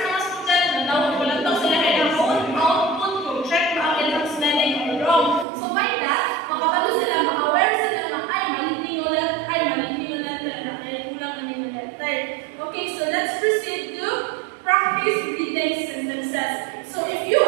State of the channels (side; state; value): left; drops out; at 5.5 s